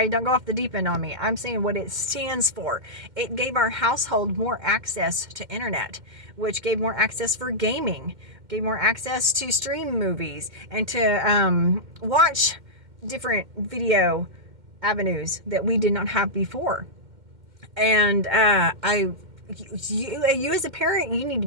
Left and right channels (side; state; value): left; late; 2.1 ms